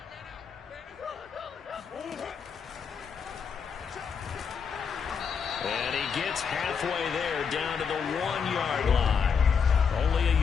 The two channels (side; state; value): right; quieter; 6.4 dB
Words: And he gets halfway there down to the 1-yard line. Only a